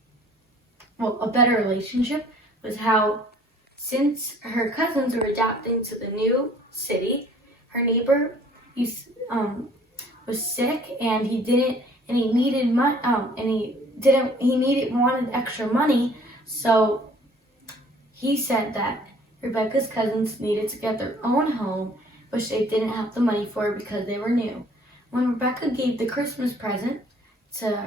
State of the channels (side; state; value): both; normal; correlation 0.55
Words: well, a better relationship, was how since her cousins were adapting to the new city, her neighbor was sick and he wanted extra money, so he said that Rebecca's cousins needed to get their own home, which they didn't have the money for because they were new. When Rebecca gave the Christmas present